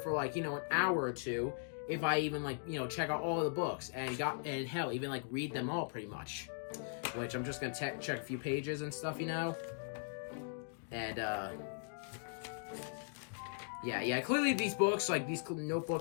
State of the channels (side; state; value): right; silent; digital silence